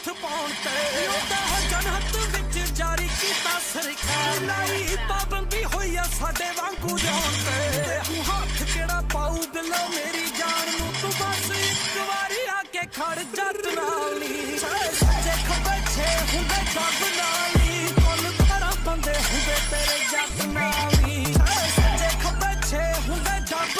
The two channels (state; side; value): identical; both; correlation 1.00